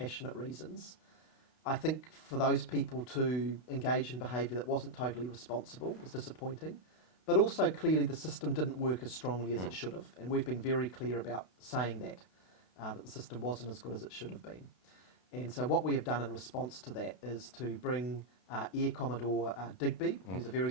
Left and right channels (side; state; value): right; late; 32 ms